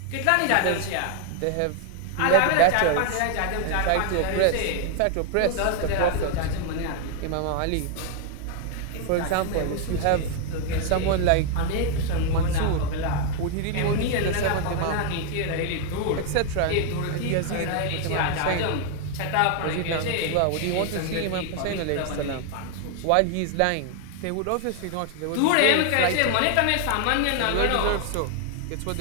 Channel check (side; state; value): both; different; correlation 0.00